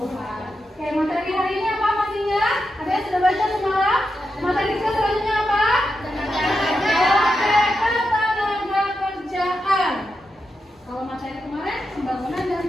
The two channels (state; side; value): normal; both; correlation 0.87